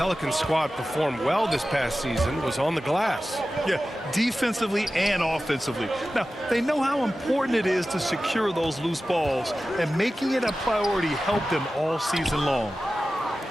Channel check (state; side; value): normal; both; correlation 0.95